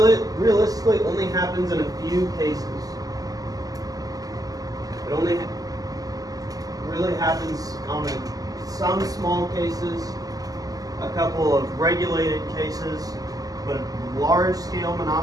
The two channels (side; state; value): left; late; 0.17 ms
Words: only happens in a few cases. It only really happens on some small cases, a couple of regulated cases, but large-scale